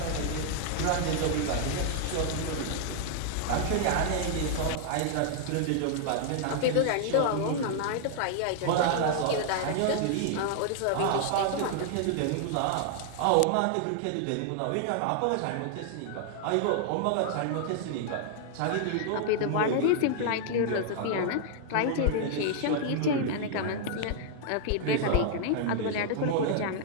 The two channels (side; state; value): both; different; correlation -0.01